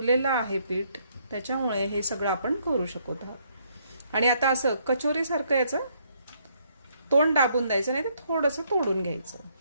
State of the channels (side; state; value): both; inverted; correlation -0.70